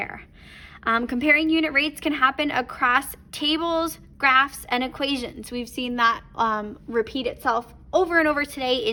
Comparing unit rates can happen across tables, graphs, and equations. We've seen that repeat itself over and over today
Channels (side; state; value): both; identical; correlation 1.00